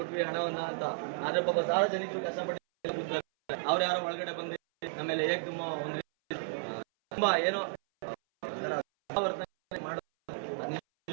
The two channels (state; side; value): silent; left; 56 dB below the other